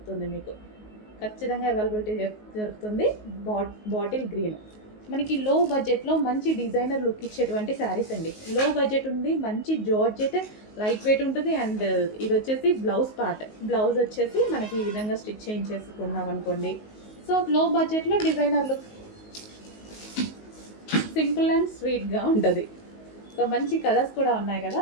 మీకు ఖచ్చితంగా అవైలబిలిటీ దొరుకుతుంది. బాటిల్ గ్రీన్ మనకి లో బడ్జెట్లో మంచి డిజైనర్ లుక్ ఇచ్చేటువంటి శారీస్ అండి. లో బడ్జెట్ ఉంది, మంచి జార్జెట్, లైట్ వెయిట్ ఉంటుంది. అండ్ ఇది వచ్చేసి బ్లౌజ్ పార్ట్. బ్లౌజ్ వచ్చేసి మనకి ఈ విధంగా స్టిచ్ చేయించేసుకున్నాం అనుకోండి. సో లో బడ్జెట్లో డిజైనర్ లుక్, సింపుల్ అండ్ స్వీట్గా ఉంటుంది. సో మంచి కలర్స్ కూడా ఉన్నాయి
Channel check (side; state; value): right; late; 19 ms